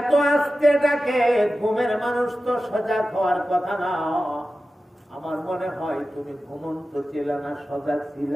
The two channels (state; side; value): normal; both; correlation 0.94